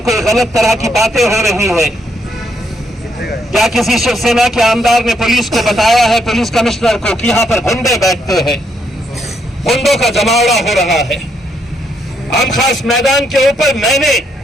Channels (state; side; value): normal; both; correlation 0.75